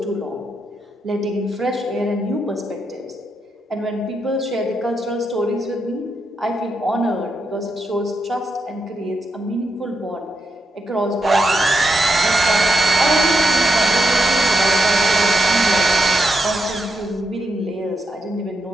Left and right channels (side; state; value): both; normal; correlation 0.84